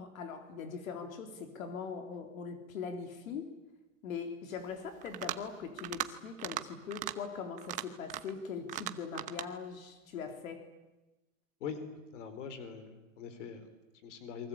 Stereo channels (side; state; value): both; normal; correlation 0.14